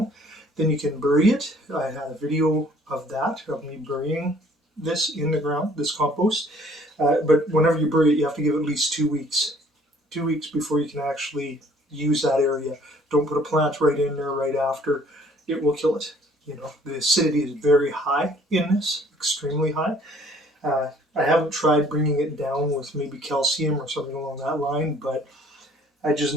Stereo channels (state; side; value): normal; both; correlation 0.58